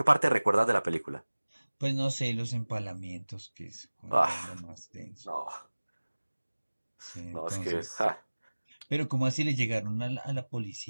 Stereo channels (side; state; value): both; inverted; correlation -1.00